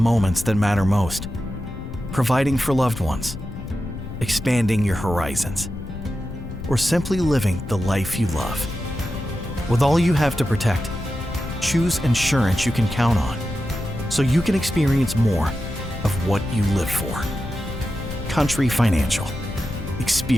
that matter most. Providing for loved ones, expanding your horizons, or simply living the life you love. With all you have to protect, choose insurance you can count on so you can experience more of what you live for. Country Financial.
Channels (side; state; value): left; noise; rumble, 9 dB below the sound